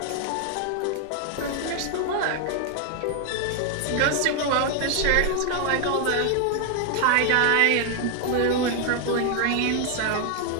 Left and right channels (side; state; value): both; different; correlation 0.01